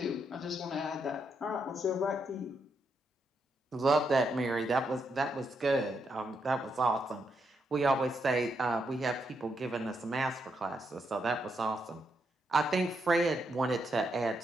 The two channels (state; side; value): normal; both; correlation 0.80